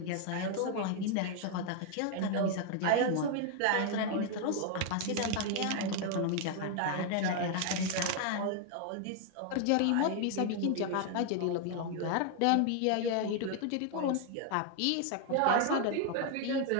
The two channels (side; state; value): both; different; correlation 0.00